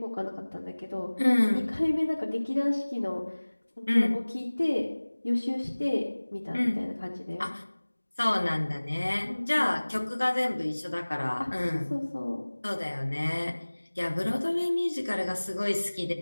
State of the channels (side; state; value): both; inverted; correlation -1.00